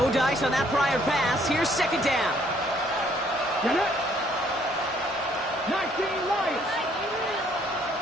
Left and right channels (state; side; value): normal; both; correlation 0.65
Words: No dice on that prior pass. Here's second down. Get it. 19 Lions.